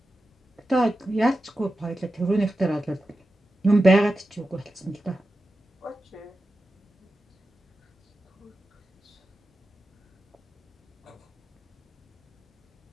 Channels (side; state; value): both; normal; correlation 0.92